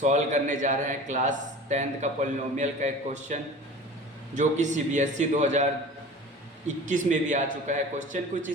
करने जा रहे हैं क्लास 10th का पॉलिनोमियल का एक क्वेश्चन जो कि सीबीएसई 2021 में भी आ चुका है। क्वेश्चन कुछ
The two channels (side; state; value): both; normal; correlation 0.39